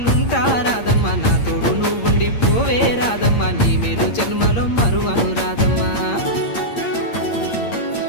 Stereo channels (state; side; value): late; right; 8.7 ms